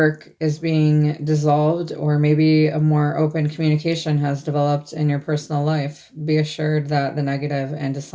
is being dissolved, or maybe a more open communication has developed in your personal life. Be assured that the negative and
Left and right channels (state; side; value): identical; both; correlation 1.00